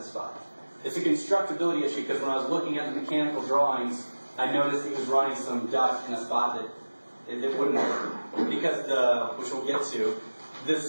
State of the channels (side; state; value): both; inverted; correlation -1.00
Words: spot. It's a constructability issue because when I was looking at the mechanical drawings, I noticed he was running some duct in a spot that it wouldn't work. Because which we'll get to, the